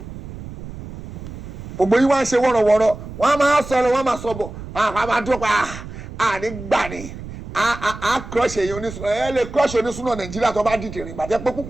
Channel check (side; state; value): right; noise; rumble, 12 dB below the sound